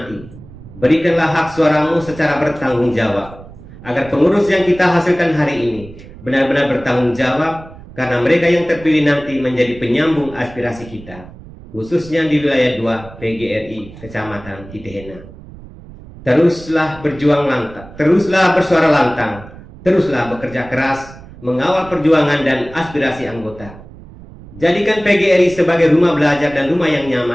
berikanlah hak suaramu secara bertanggung jawab, agar pengurus yang kita hasilkan hari ini benar-benar bertanggung jawab, karena mereka yang terpilih nanti menjadi penyambung aspirasi kita, khususnya di wilayah 2 PGRI Kecamatan Titehena. Teruslah berjuang lantang, teruslah bersuara lantang, teruslah bekerja keras, mengawal perjuangan dan aspirasi anggota. Jadikan PGRI sebagai rumah belajar dan rumah yang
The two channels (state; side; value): noise; right; rumble, 18 dB below the sound